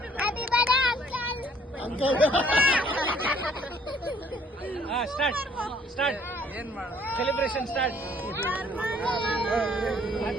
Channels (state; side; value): normal; both; correlation 0.60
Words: Start celebration start.